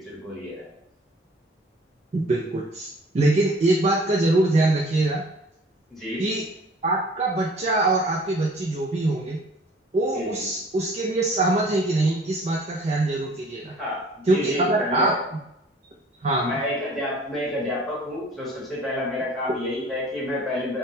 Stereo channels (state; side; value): normal; both; correlation 0.51